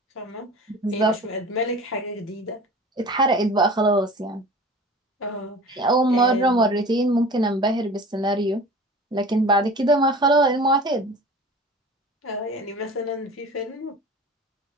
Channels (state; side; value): normal; both; correlation 0.40